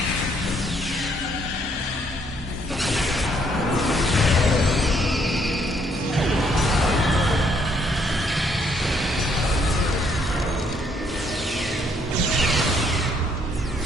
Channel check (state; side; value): normal; both; correlation 0.68